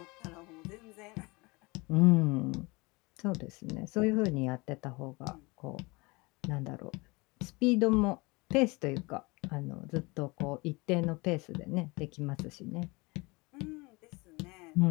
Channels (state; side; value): quieter; right; 25.4 dB